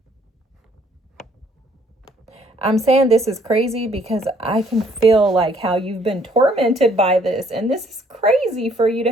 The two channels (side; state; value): both; normal; correlation 0.63